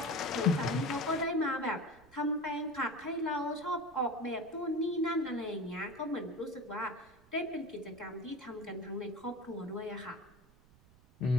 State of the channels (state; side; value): noise; right; rumble, 27 dB below the sound